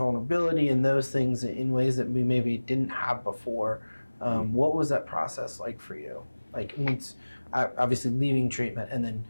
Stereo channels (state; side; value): inverted; both; correlation -1.00